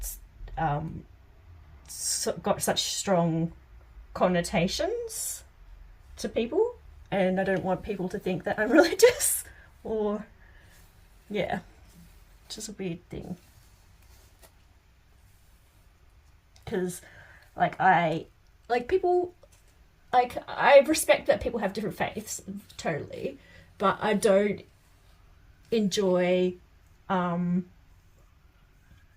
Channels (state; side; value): identical; both; correlation 1.00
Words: got such strong connotations to people, and I don't want people to think that I'm religious, or, yeah, it's just a weird thing. Because, like, I respect that people have different faiths, totally, but I don't enjoy